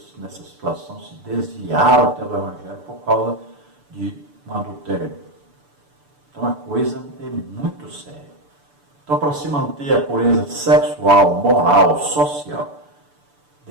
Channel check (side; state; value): left; late; 6.9 ms